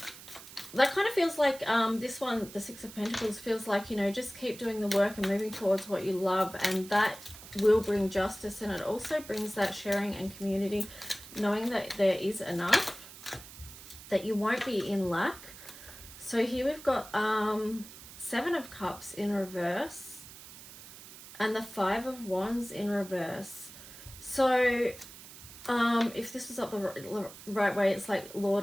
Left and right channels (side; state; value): right; noise; hiss, 16 dB below the sound